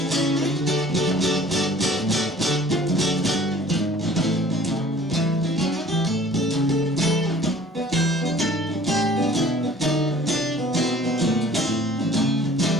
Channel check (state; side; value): normal; both; correlation 0.51